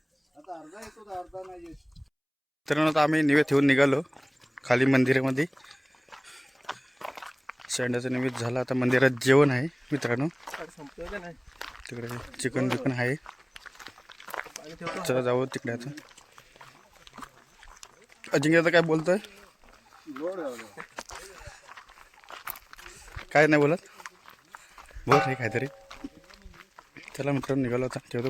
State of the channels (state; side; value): identical; both; correlation 1.00